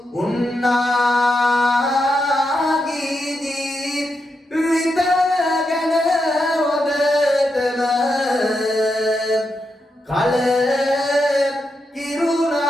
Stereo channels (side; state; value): both; normal; correlation 0.84